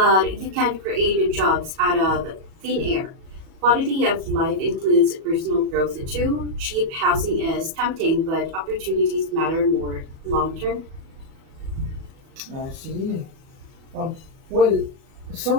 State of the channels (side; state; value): left; late; 37 ms